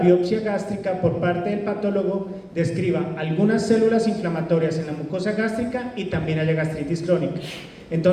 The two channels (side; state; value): both; identical; correlation 1.00